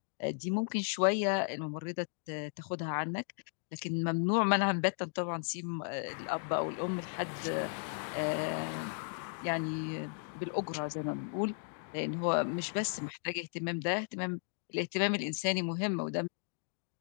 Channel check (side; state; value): right; silent; digital silence